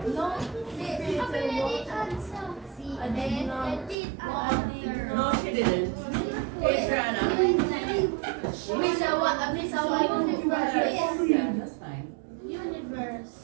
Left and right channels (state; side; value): drops out; left; at 4.0 s